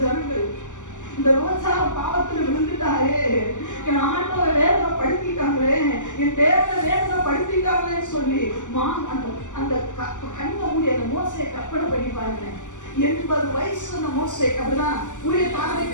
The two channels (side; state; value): right; late; 0.86 ms